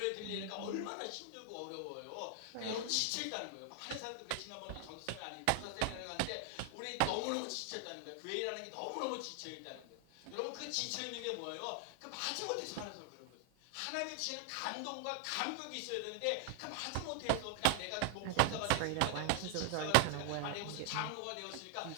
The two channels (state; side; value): different; both; correlation 0.00